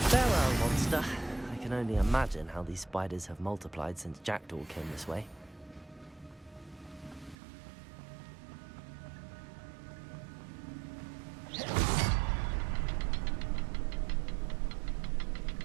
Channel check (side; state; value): left; drops out; at 7.4 s